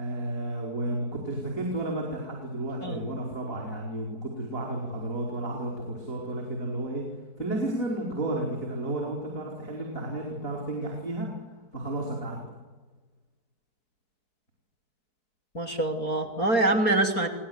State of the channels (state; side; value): late; right; 4.3 ms